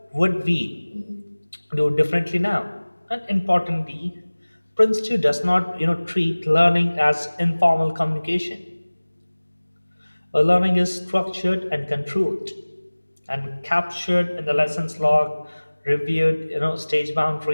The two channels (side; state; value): both; inverted; correlation -1.00